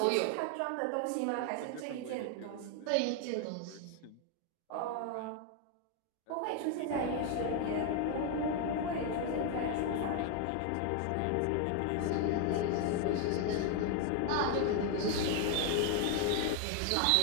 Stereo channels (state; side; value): different; both; correlation 0.00